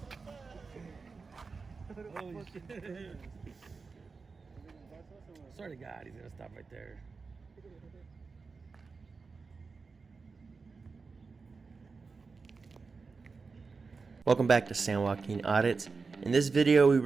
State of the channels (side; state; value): left; quieter; 4.5 dB